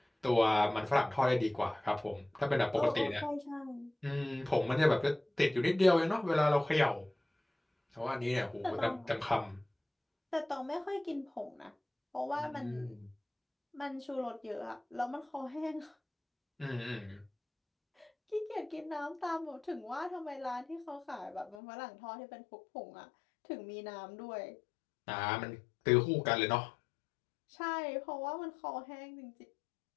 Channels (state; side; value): drops out; right; at 21.6 s